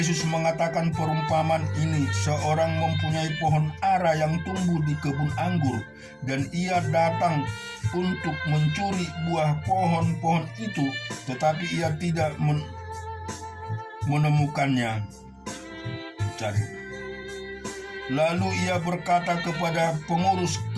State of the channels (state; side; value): identical; both; correlation 1.00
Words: mengatakan perumpamaan ini, seorang mempunyai pohon ara yang tumbuh di kebun anggur, dan ia datang untuk mencuri buah pohon-pohon itu, tetapi ia tidak menemukannya. Lalu ia berkata kepada pengurus